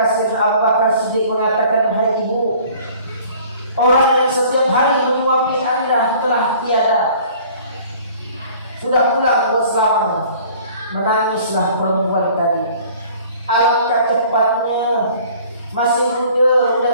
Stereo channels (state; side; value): inverted; both; correlation -0.51